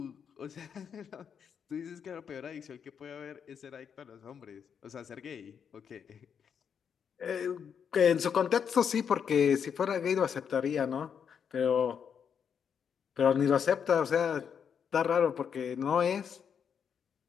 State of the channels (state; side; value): quieter; right; 7.4 dB